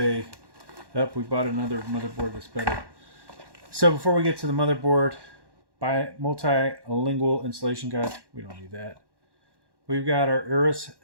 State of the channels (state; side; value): late; left; 1.1 ms